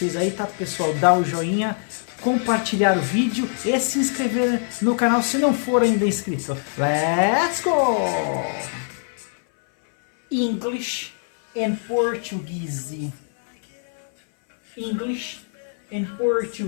aí, tá pessoal? Dá o joinha, compartilhar o vídeo e se inscrever no canal se não for ainda inscrito. Let's go! English and Portuguese. English and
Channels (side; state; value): right; silent; 59 dB below the other